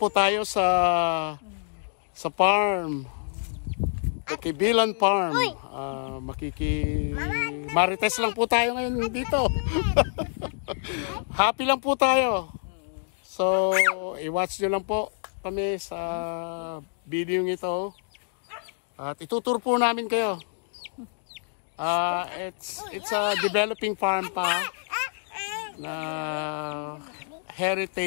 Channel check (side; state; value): right; silent; digital silence